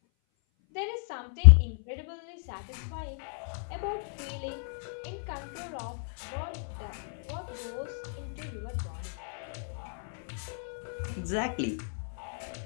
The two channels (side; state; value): right; silent; 56 dB below the other